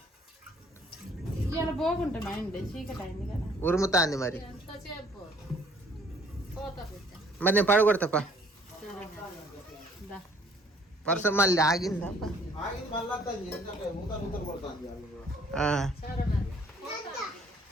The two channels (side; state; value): both; normal; correlation 0.59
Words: ఉరుముతాంది మరి. మరి నేను పడగొడతాపా. వర్షం మళ్ళీ ఆగిందా?